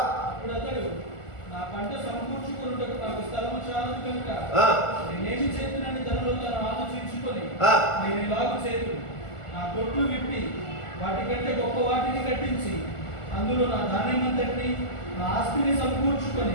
అతడు, నా పంట సమకూర్చుకొనుటకు నాకు స్థలము చాలదు కనుక నేనేమి చేతునని తనలో తను ఆలోచించుకొని నేను ఇలాగు చేతును, నా కొట్లు విప్పి వాటికంటే గొప్ప వాటిని కట్టించి అందులో నా ధాన్యమంతటిని నా ఆస్తిని సమకూర్చుకొని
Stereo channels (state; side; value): late; right; 1.4 ms